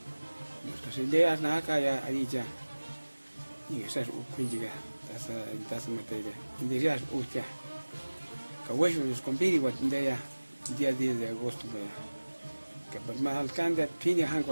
nuestras ideas na acá ya ahí y esas quindi que tasa materia indias usted que hueso los compiri what día 10 de agosto que pues más alcance tiene han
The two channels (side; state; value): both; inverted; correlation -1.00